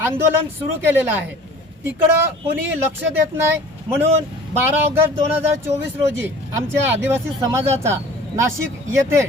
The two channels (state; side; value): normal; both; correlation 0.45